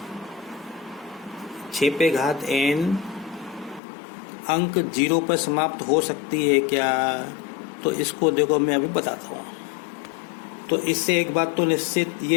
अंक 0 पर समाप्त हो सकती है क्या। तो इसको देखो मैं अभी बताता हूँ। तो इससे एक बात तो निश्चित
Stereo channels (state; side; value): drops out; right; at 3.8 s